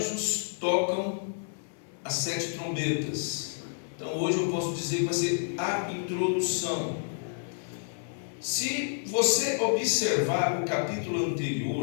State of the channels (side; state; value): right; silent; 58 dB below the other